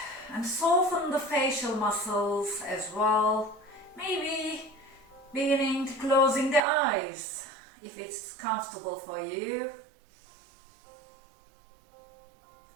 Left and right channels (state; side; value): drops out; left; at 6.6 s